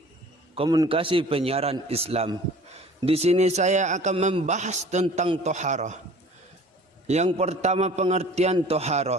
Komunikasi Penyiaran Islam. Di sini saya akan membahas tentang toharoh. Yang pertama, pengertian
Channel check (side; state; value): both; normal; correlation 0.47